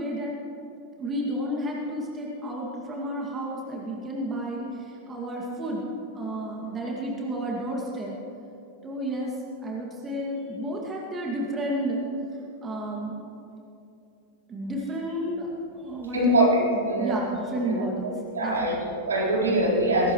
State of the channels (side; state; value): both; normal; correlation -0.02